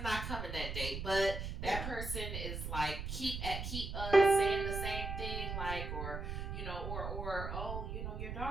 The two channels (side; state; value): right; noise; rumble, 5 dB below the sound